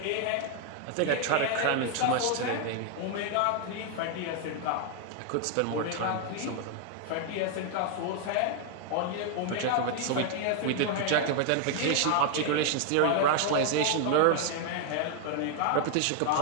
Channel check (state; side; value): different; both; correlation 0.00